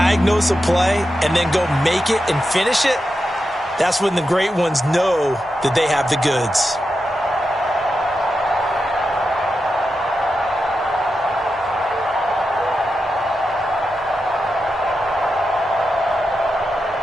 a play, and then go make it and finish it, that's when the great ones know that they have the goods.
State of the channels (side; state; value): both; normal; correlation 0.89